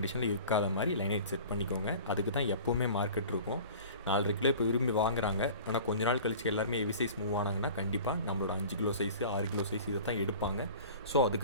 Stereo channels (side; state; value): both; inverted; correlation -0.42